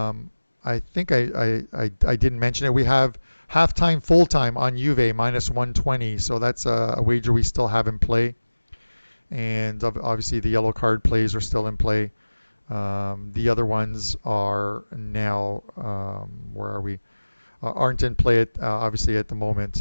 think I didn't mention it. We have halftime, full-time on Juve, -120. So that's a wager we still have in play. And obviously the yellow card plays are still in play. The other ones are now, where are we? Aren't in play obviously at the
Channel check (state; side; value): inverted; both; correlation -1.00